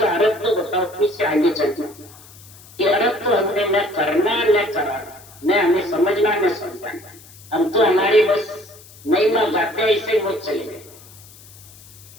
अर्थ तो बताओ, फिर से आगे चलते कि अर्थ तो हमने न करना न कराना, न हमें समझना न समझाना, हम तो हमारी बस महिमा गाते हैं, इसे वो चले गए।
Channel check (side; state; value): left; noise; hiss, 22 dB below the sound